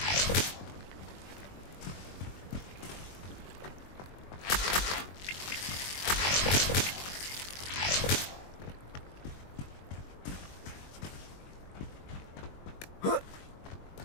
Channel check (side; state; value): right; late; 21 ms